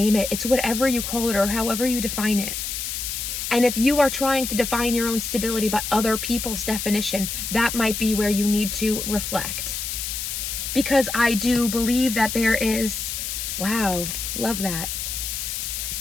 it. It's whatever you call it or however you define it. And if you are trying to define your own stability by other people's definition, that might be where you need to reflect. Because I do believe that there is, wow, love that.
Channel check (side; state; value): left; noise; hiss, 4 dB below the sound